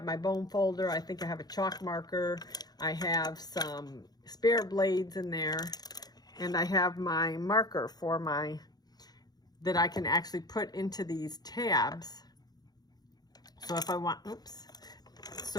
my bone folder. I think I have a chalk marker. I have some spare blades in there, and I have my marker for my that I can actually put into these tabs. So if I want, oops.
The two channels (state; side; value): late; right; 0.19 ms